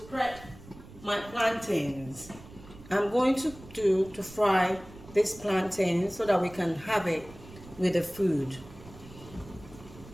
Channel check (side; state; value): right; noise; rumble, 19 dB below the sound